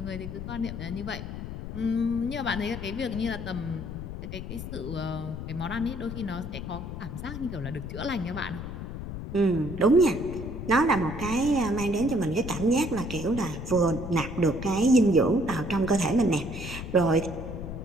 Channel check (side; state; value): left; noise; rumble, 8 dB below the sound